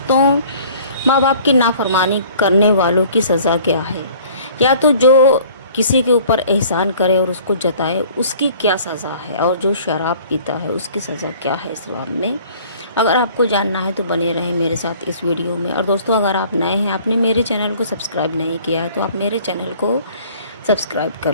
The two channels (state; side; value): inverted; both; correlation -0.52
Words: माँ बाप की नाफरमानी करने वालों की सज़ा क्या है, या तो जो किसी के ऊपर एहसान करे और उसको जताए उसकी क्या सज़ा है, और जो शराब पीता है उसकी सज़ा क्या है इस्लाम में। अगर आपको जानना है तो बने रहें मेरे साथ इस वीडियो में। और दोस्तों, अगर आप नए हैं, आपने मेरे चैनल को सब्सक्राइब नहीं किया है तो आप मेरे चैनल को सब्सक्राइब कर